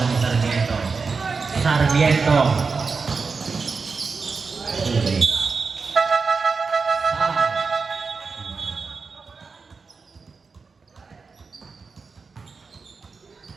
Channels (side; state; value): left; quieter; 4.7 dB